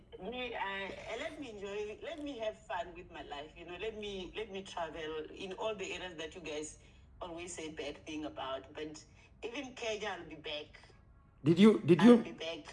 Really? Let me enjoy. Let me have fun with my life. You know, let me travel in all the areas that you guys always say bad thing about. But even Kenya, I'll be back. I'll be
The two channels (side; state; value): both; identical; correlation 1.00